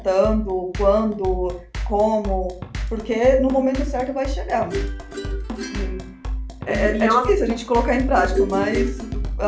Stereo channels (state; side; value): identical; both; correlation 1.00